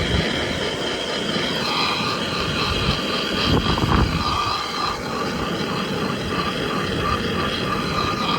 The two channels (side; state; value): both; identical; correlation 1.00